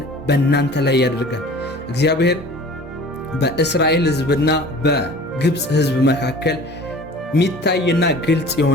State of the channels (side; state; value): both; normal; correlation 0.45